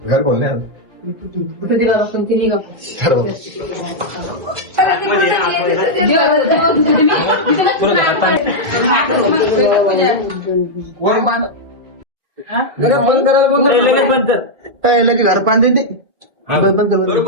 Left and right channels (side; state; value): left; late; 2.0 ms